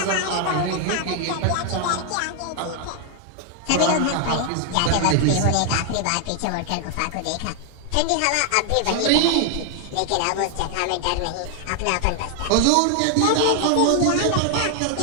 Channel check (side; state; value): both; different; correlation 0.00